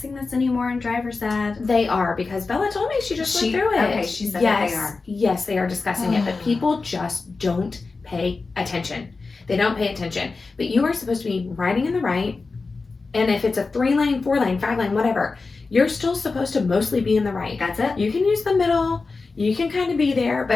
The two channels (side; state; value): right; quieter; 4.1 dB